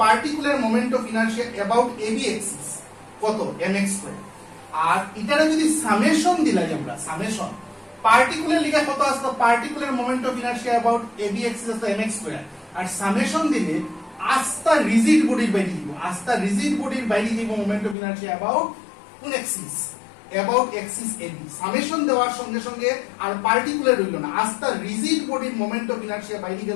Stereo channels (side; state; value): right; drops out; at 17.9 s